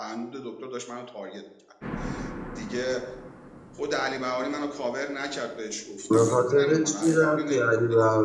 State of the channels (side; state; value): both; identical; correlation 1.00